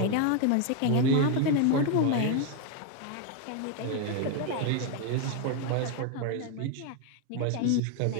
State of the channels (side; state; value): both; different; correlation 0.01